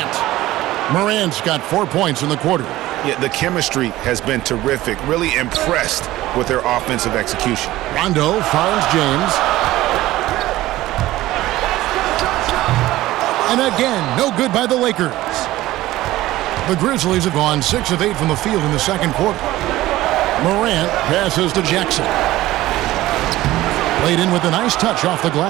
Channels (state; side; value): quieter; left; 16.4 dB